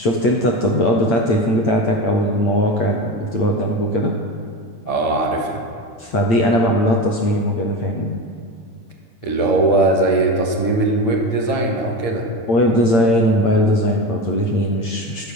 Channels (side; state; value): right; late; 8.7 ms